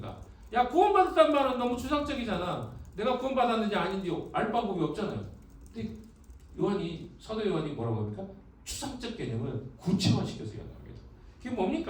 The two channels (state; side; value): identical; both; correlation 1.00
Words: 야, 구원받았다는 말은 너무 추상적이잖아. 내가 구원받았는지 아닌지 알 방법이 없잖아요. 근데 사도 요한이 뭐라고 합니까? 추상적 개념을 구체화시켜서 이야기합니다. 그게